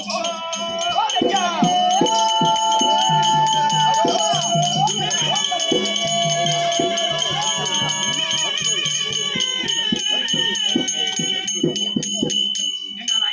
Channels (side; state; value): both; identical; correlation 1.00